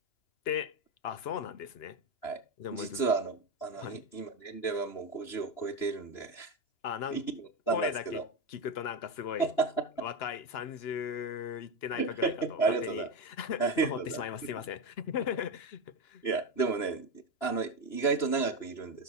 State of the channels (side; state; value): right; late; 2.9 ms